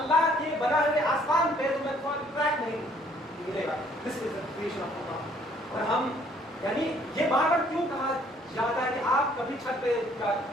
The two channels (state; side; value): normal; both; correlation 0.62